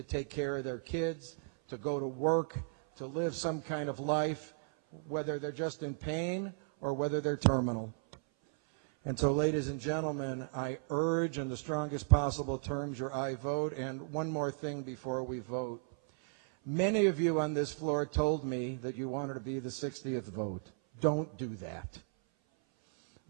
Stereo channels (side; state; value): left; silent; 54 dB below the other